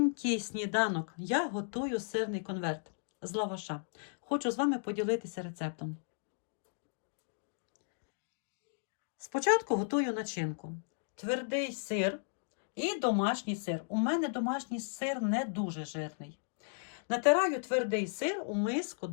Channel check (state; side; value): silent; right; digital silence